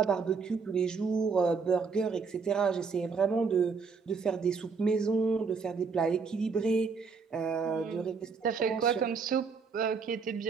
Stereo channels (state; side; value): quieter; left; 5.1 dB